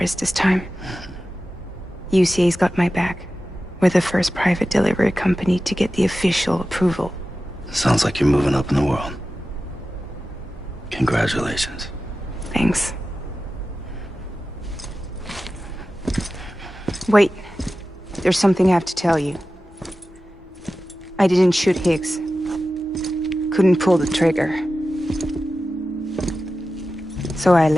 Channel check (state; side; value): normal; both; correlation 0.94